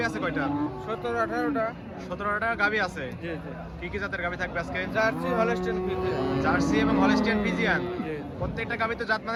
আছে কয়টা? 17-18টা। 17টা গাভী আছে। জি জি। কি কি জাতের গাভী থাকবে আজকে? Jersey, Holstein Friesian. জার্সি এবং হলস্টিয়ান ফ্রিজিয়ান। জি। প্রত্যেকটা গাভী তো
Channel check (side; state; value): both; identical; correlation 1.00